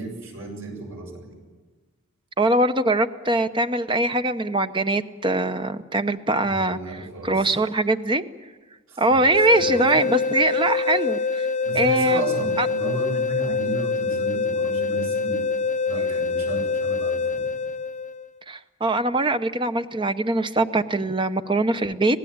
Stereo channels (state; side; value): normal; both; correlation 0.12